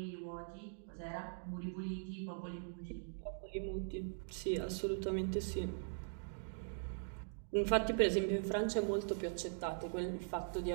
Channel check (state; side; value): silent; left; digital silence